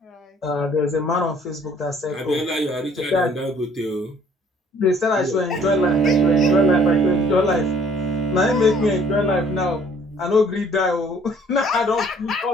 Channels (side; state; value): both; normal; correlation 0.57